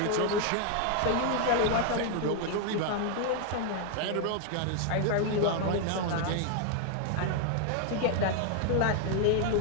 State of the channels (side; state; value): both; different; correlation 0.00